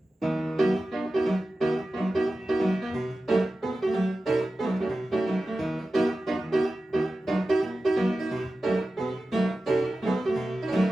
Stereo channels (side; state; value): both; normal; correlation 0.94